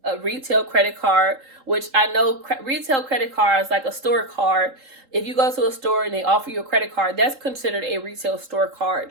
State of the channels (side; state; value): left; late; 3.8 ms